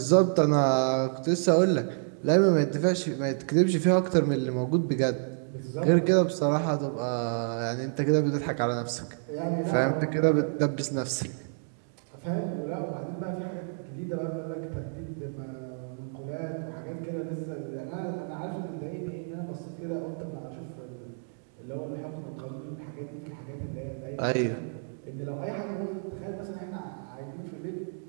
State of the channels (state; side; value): silent; left; digital silence